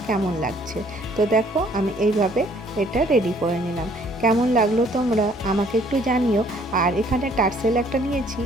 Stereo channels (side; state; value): both; normal; correlation 0.61